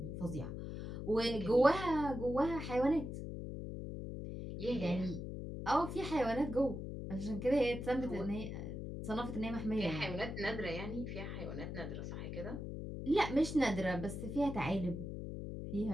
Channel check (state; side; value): noise; left; hum, 6 dB below the sound